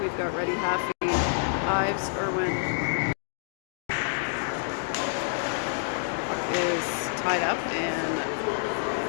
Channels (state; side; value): silent; right; digital silence